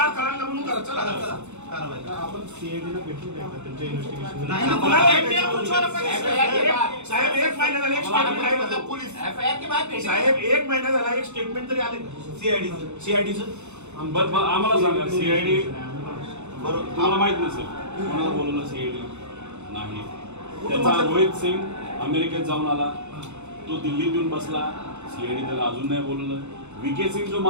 करायला म्हणून करा. चला आपण सीआयडीला भेटली त्यांच्या इन्व्हेस्टिगेशन साहेब 1 महिना झाला एक स्टेटमेंट पोलीस साहेब 1 महिना झाला एक स्टेटमेंट तरी आले सीआयडीचं. आम्हाला सांगा सीआयडी तुम्हाला माहित नसेल कोणाला बोलवलं सीआयडी नाही. त्याचा रोहित सिंग अमेरिकेत जाऊन आला, तो दिल्लीत येऊन बसला, सीआयडी त्याला अजून नाही बोलवलं. विके सिंग जो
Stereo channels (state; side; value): late; left; 0.82 ms